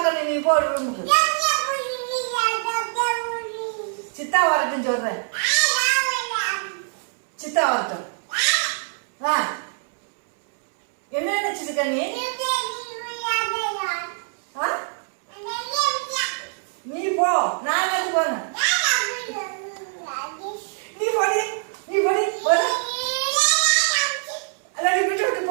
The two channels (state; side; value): silent; left; 63 dB below the other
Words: நீ போ ரூமுக்கு. சித்தா வரட்டும் சொல்றேன். சித்தா வரட்டும். என்ன நினைச்சிருக்க நீ? நீ போ, நான் எது போன? நீ போடி, நீ போடி, போடு. அல்ல நீ விட்டு விட்டு